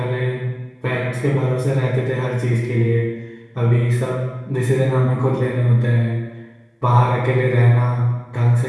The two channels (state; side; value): identical; both; correlation 1.00